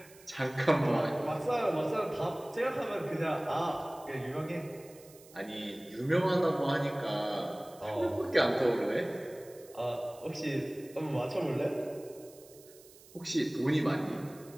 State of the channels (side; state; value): right; noise; hiss, 23 dB below the sound